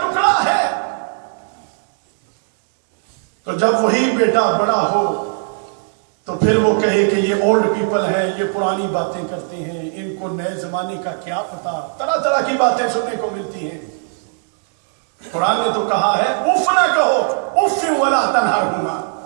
ہے۔ تو جب وہی بیٹا بڑا ہو تو پھر وہ کہے کہ یہ اولڈ پیپل ہیں، یہ پرانی باتیں کرتے ہیں، ان کو نئے زمانے کا کیا پتا، طرح طرح کی باتیں سننے کو ملتی ہیں۔ قرآن نے تو کہا ہے اف نہ کہو، اف ولا تنہرہما،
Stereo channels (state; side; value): silent; left; digital silence